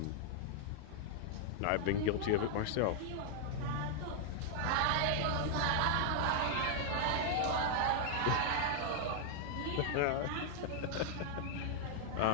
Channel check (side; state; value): both; different; correlation 0.00